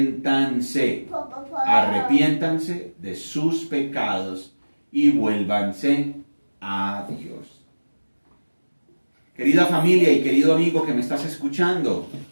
Arrepiéntanse de sus pecados y vuélvanse a Dios. Querida familia y querido amigo que me estás escuchando,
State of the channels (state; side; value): inverted; both; correlation -1.00